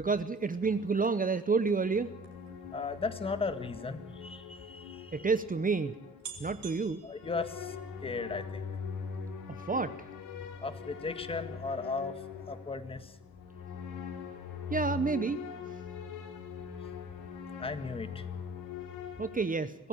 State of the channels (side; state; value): both; normal; correlation 0.46